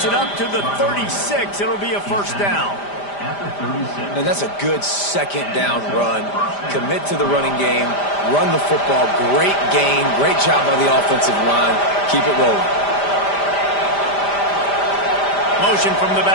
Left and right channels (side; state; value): right; late; 5.0 ms